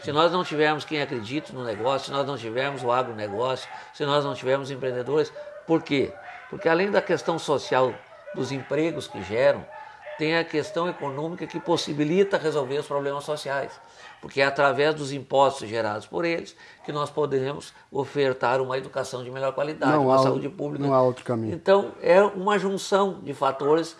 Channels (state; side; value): identical; both; correlation 1.00